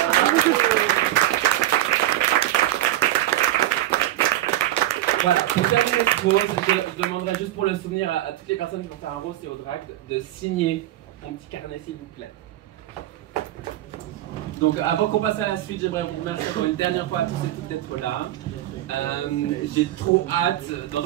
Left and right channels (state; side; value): quieter; left; 14.3 dB